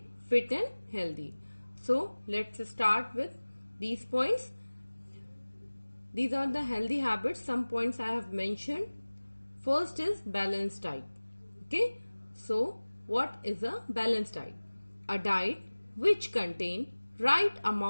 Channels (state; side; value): inverted; both; correlation -1.00